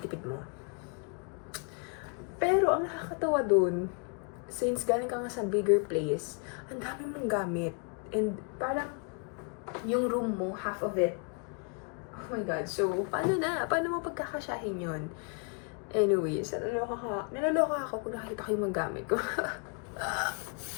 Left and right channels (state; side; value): quieter; right; 39.5 dB